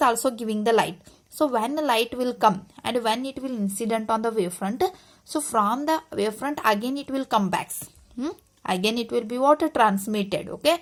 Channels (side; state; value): both; identical; correlation 1.00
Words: also giving the light. So when the light will come and when it will incident on the wavefront, so from the wavefront again it will come back. Again it will be what? Transmitted. Okay,